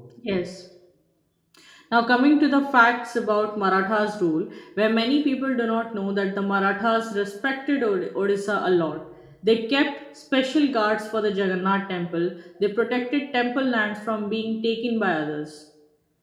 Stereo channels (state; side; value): identical; both; correlation 1.00